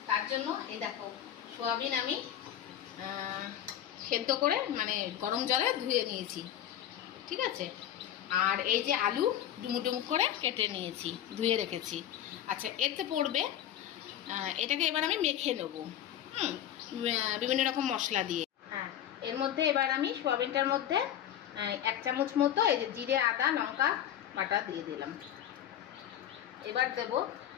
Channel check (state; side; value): quieter; right; 10.9 dB